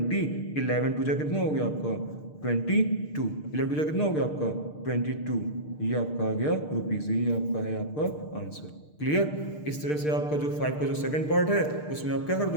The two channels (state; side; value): late; right; 6.6 ms